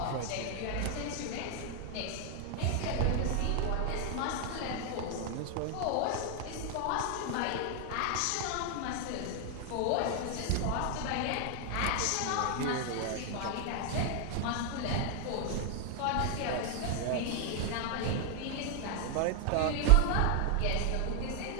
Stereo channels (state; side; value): different; both; correlation 0.00